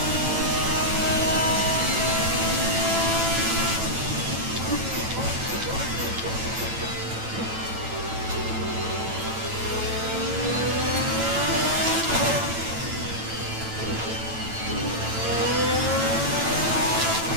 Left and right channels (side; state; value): left; late; 9.0 ms